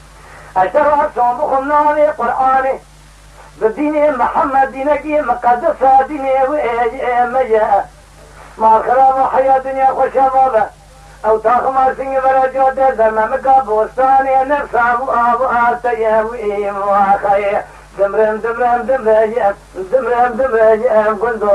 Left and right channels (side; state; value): both; identical; correlation 1.00